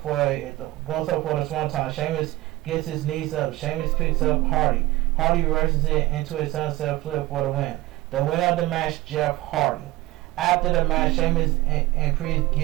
for the swanton. Sheamus gets his knees up. Sheamus picks up Hardy. Hardy reverses it into a sunset flip for the win. The winner of the match, Jeff Hardy. After the match, Sheamus and Priest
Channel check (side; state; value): left; quieter; 17.8 dB